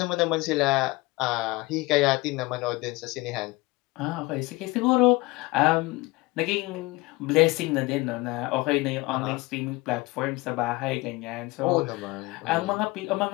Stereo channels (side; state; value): right; quieter; 22.4 dB